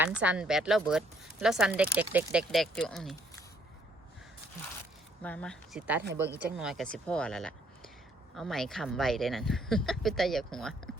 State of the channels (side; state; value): both; normal; correlation 0.67